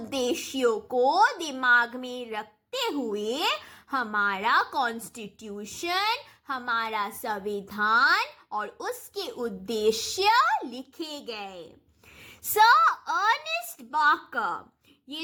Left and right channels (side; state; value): both; identical; correlation 1.00